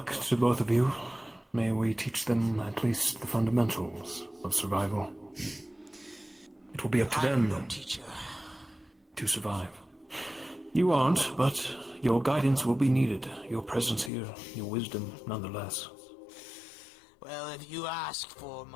to both of you. May we teach them at least the fundamentals of survival. It will be up to them to survive. You aren't, but your guidance will be needed. Your presence here, your wisdom, nonetheless. Well, if you ask for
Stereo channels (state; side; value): drops out; right; at 14.1 s